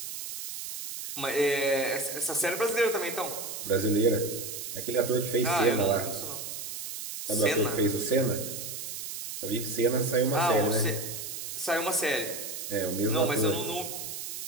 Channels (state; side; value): noise; right; hiss, 7 dB below the sound